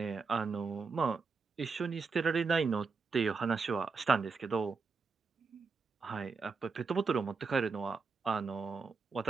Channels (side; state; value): left; quieter; 4.8 dB